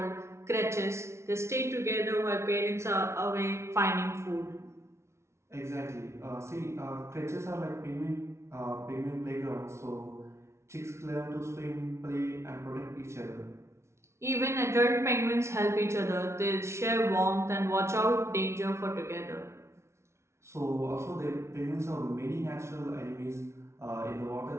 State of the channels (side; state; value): left; late; 0.13 ms